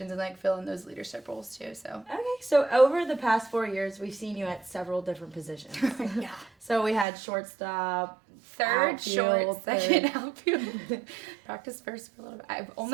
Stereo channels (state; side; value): drops out; left; at 7.1 s